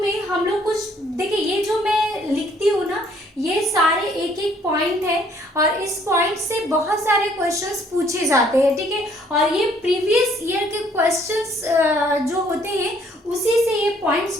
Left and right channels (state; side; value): normal; both; correlation 0.63